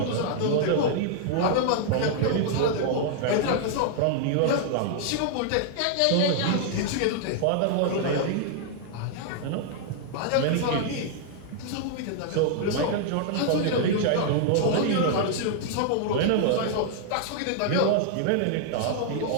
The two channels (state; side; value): different; both; correlation -0.01